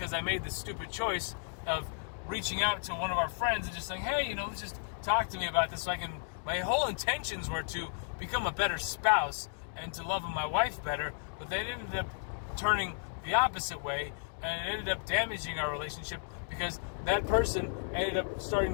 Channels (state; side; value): silent; right; digital silence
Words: I made this stupid choice of reaching out to one of our friends and just saying, hey, let's just talk to me about this so I can, my whole intentions were to become a better spouse and to love my wife better, but they ended up turning the opposite way, and it ended up damaging our relationship because that person ended up starting